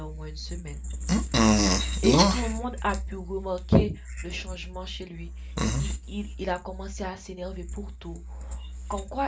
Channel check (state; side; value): identical; both; correlation 1.00